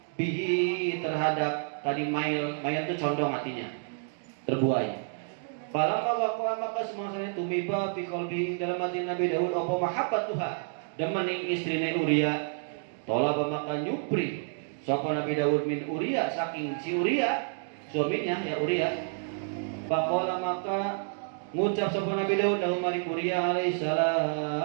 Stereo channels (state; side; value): silent; left; digital silence